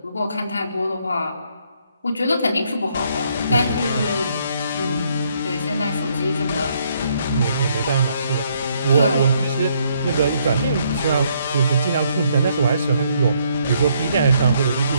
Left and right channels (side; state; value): both; inverted; correlation -0.70